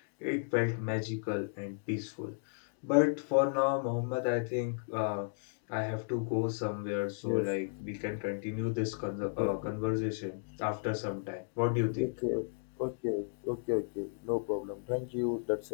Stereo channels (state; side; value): silent; right; digital silence